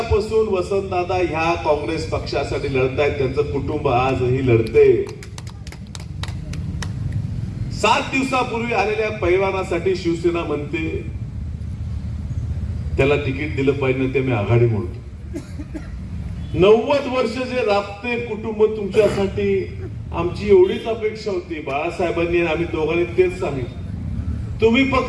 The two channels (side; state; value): both; identical; correlation 1.00